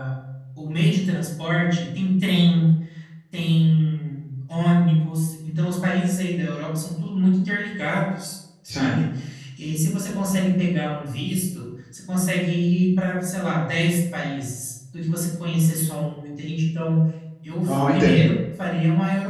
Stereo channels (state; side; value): identical; both; correlation 1.00